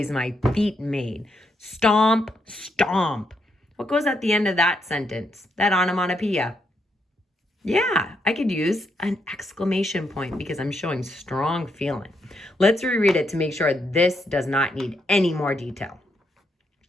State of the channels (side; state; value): both; normal; correlation 0.78